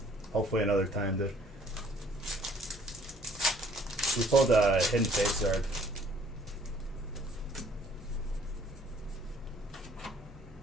Hopefully another time, dude. We pulled a Hidden Fate Zard.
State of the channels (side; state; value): both; normal; correlation 0.60